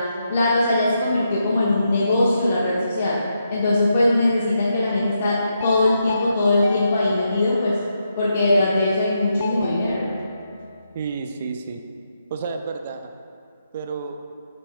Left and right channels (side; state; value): both; inverted; correlation -0.82